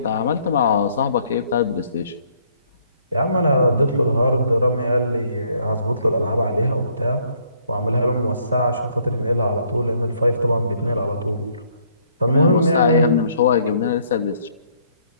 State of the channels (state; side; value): inverted; both; correlation -0.66